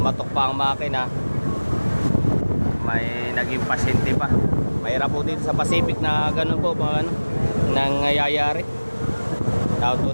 pa ang makina. May naging pasyente pa. Mahirap po dito sa Pacific na ganun po nangyayari. Tawag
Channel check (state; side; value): inverted; both; correlation -1.00